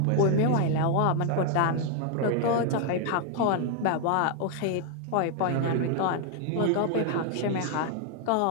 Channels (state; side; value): different; both; correlation 0.00